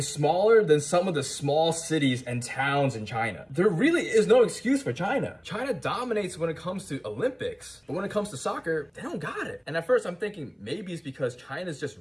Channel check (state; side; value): identical; both; correlation 1.00